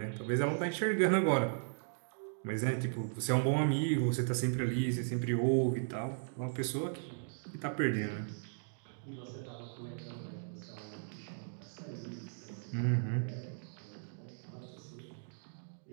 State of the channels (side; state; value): left; silent; digital silence